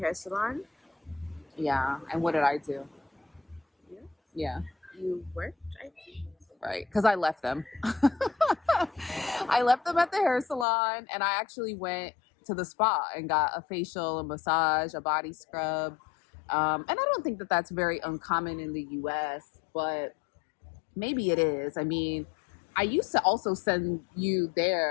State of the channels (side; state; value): right; drops out; at 10.7 s